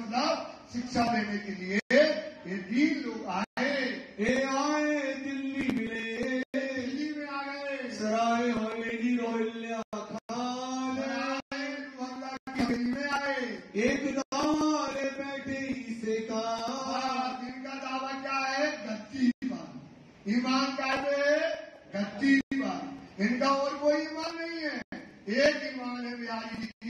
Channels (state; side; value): identical; both; correlation 1.00